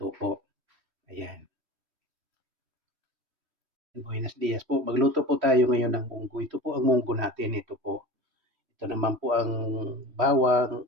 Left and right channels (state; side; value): late; left; 3.1 ms